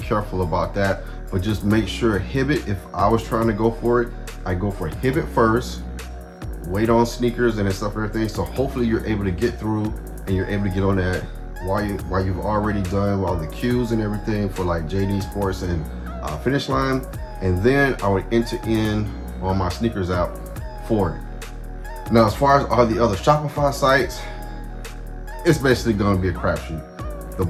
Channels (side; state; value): both; identical; correlation 1.00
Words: about that. But just make sure Hibbett, if I was trying to go for it, I go for Hibbett first, wait on sneakers and stuff and everything. So hopefully you're able to get through and you're able to get on that while you've already done all the queues and everything for like JD Sports and Finish Line. And then I would enter in on my sneakers app for it. Now, as far as all the other Shopify sites, it's basically going to be a crapshoot. The